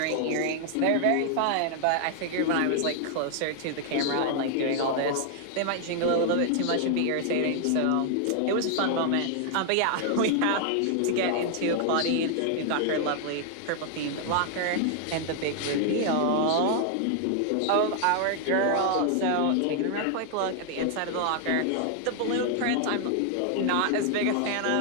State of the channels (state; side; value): different; both; correlation 0.00